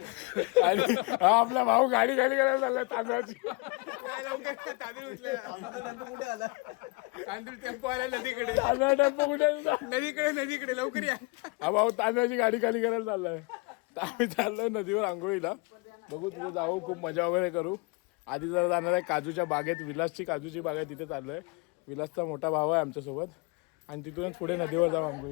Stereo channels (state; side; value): quieter; right; 28.7 dB